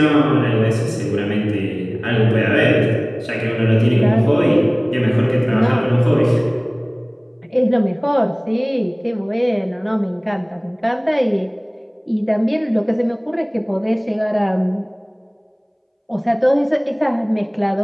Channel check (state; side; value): identical; both; correlation 1.00